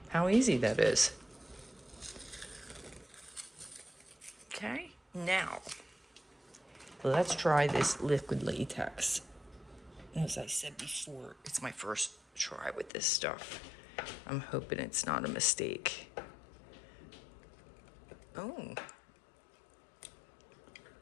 how easy that is. Okay, now let's try this liquid latex. As I said before, it's my first try with this stuff. I'm hoping it's not a mistake. Oh,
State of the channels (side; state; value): right; drops out; at 12.9 s